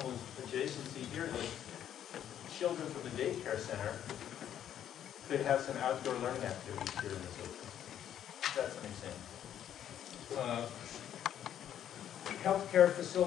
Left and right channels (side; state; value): right; quieter; 10.3 dB